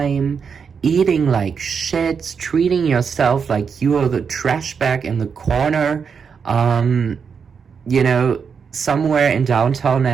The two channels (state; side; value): quieter; left; 6.2 dB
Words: eating like shit, treating yourself like you are the trash bag in the corner, you know, somewhere in downtown